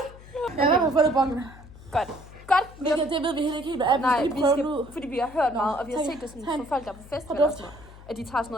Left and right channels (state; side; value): noise; left; hum, 19 dB below the sound